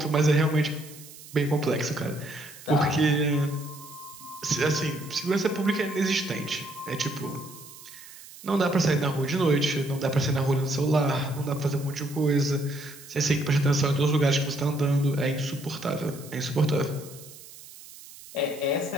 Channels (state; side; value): noise; right; hiss, 18 dB below the sound